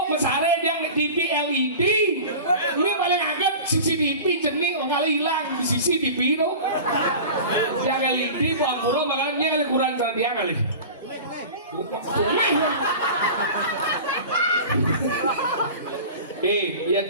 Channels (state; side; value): inverted; both; correlation -0.35